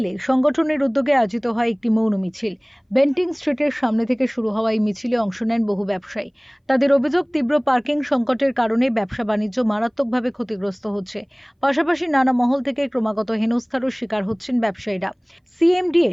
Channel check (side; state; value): both; identical; correlation 1.00